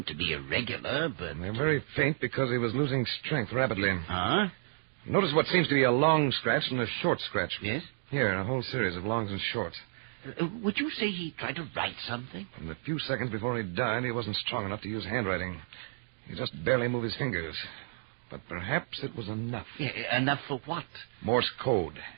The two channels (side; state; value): left; silent; digital silence